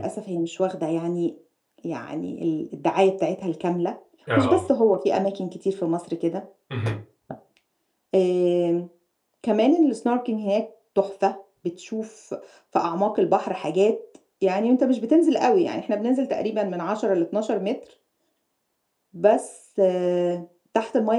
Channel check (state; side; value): identical; both; correlation 1.00